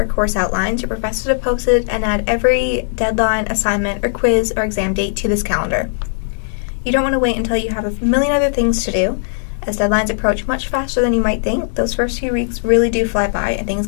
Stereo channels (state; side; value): silent; right; digital silence